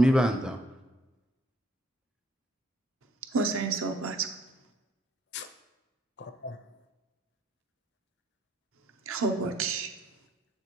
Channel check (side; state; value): both; normal; correlation 0.64